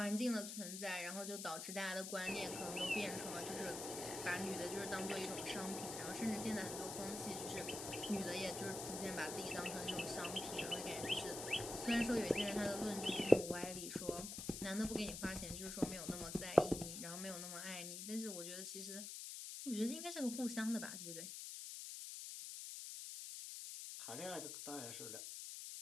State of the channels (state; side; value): noise; left; hiss, 6 dB below the sound